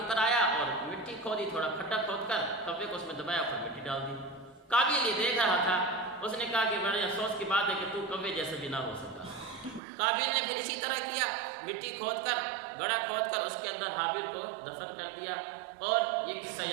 پر آیا اور مٹی کھودی، تھوڑا کھڈا کھود کر کوے کو اس میں دبایا اور مٹی ڈال دی۔ قابیل یہ دیکھ رہا تھا، اس نے کہا کہ بڑے افسوس کی بات ہے کہ تو کوے جیسے بھی نہ ہو سکتا۔ قابیل نے پھر اسی طرح کیا، مٹی کھود کر گڑھا کھود کر اس کے اندر حابیل کو دفن کر دیا، اور یہ قصہ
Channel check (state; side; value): drops out; left; at 9.8 s